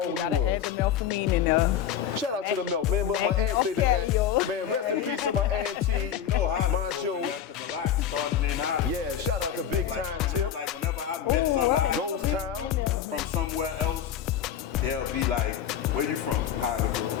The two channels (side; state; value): right; quieter; 9.3 dB